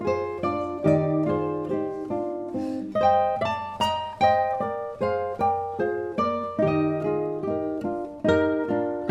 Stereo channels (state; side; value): identical; both; correlation 1.00